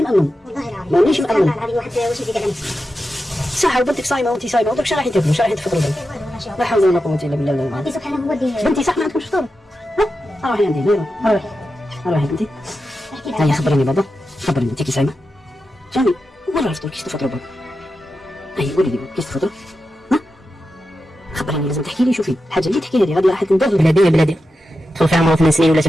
مامن والله العظيم مانيش مامن. العظيم واحد واش يدير على نفسه. صح وبنتك صايمه وانت صايمه وداك الشيء راح تاكلوا راح تفطروا لا حول ولا قوه الا بالله. ربي سبحانه هو اللي بنتي صح ما عندكمش فطور. ها روحي عندي روحي بنتي. هيا خبرني بابا خبرني انت كي صايمه جاني وين راه الفطور كيش تفطروا بابا. هيا قولي لي كيش تفطروا ها خبرني لازم تحكي لي. شوفي الحاجه اللي تحكي لي غادي راح تندوب بلادي دخل فيها عمره 8 سنين ولا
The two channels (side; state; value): both; normal; correlation 0.90